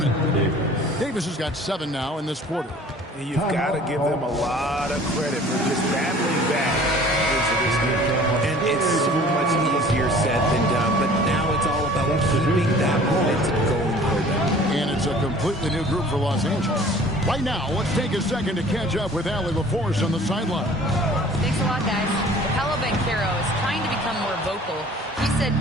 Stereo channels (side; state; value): both; normal; correlation 0.49